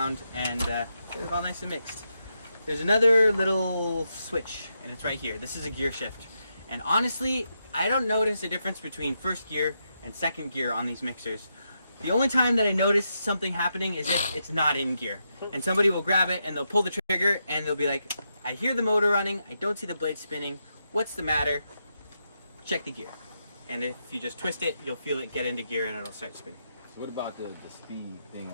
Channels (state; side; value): inverted; both; correlation -0.83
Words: and get it all nice and mixed. There's another little switch, and it's right here. This is a gear shift. And honestly, I don't notice a difference between first gear and second gear on these mixers. The only time that I notice something happening is if it's not in gear. And somebody will grab it, and they'll pull the trigger, and they'll be like, I hear the motor running, I don't see the blade spinning, what's the matter? Check the gear. And if you just twist it, you'll feel it get into gear, and it'll start spinning. So what about the speed thing